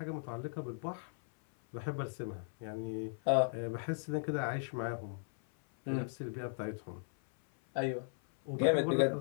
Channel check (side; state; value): right; silent; 53 dB below the other